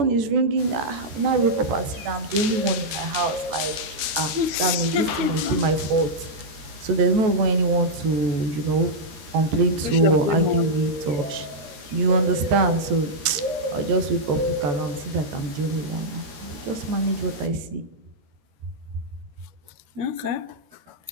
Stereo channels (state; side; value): late; left; 13 ms